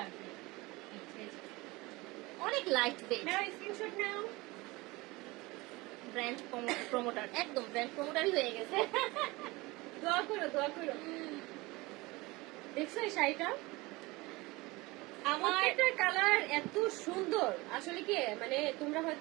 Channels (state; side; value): quieter; left; 22.5 dB